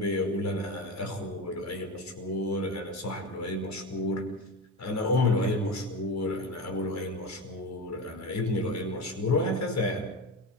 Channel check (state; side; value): normal; both; correlation 0.23